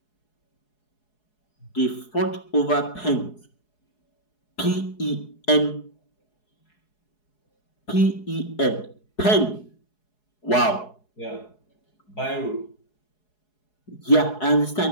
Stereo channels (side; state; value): right; late; 4.7 ms